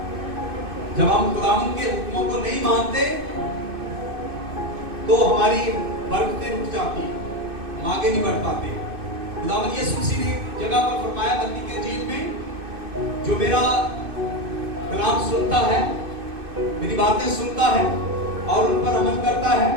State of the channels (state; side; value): late; left; 2.6 ms